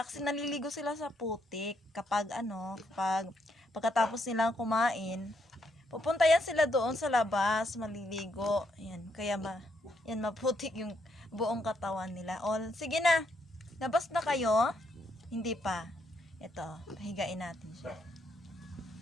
kasi naliligo sila sa putik kapag pagkatapos nilang kumain. Pupunta yan sila doon sa labas, maliligo. Ayan, kaya maputik yung buong katawan nila. O, sige na. Labas na kayo? Hindi pa. Ito, pahigain natin siya.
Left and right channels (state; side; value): normal; both; correlation 0.75